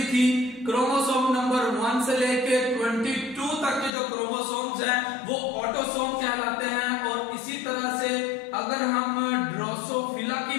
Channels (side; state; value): right; drops out; at 3.9 s